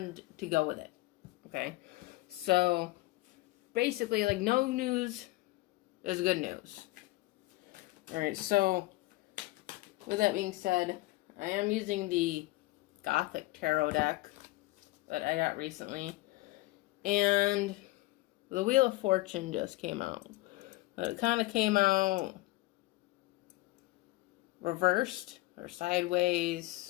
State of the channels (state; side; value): quieter; right; 19.7 dB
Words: to go with it. Okay? So basically, like, no news is good news. Alright, so with that being said, I am using the Gothic Tarot deck that I got recently, and the Wheel of Fortune just came out. But it kind of came out reversed or